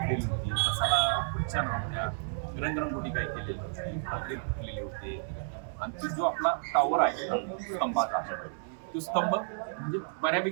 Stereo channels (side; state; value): left; silent; 57 dB below the other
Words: होती, बसाला खुर्च्या नव्हत्या, रंगरंगोटी काय केलेली होती, पत्रे फुटलेले होते. आणि तो जो आपला टॉवर आहे स्तंभाचा, तो स्तंभ म्हणजे